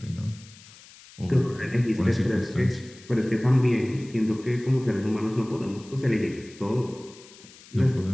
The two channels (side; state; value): left; noise; hiss, 22 dB below the sound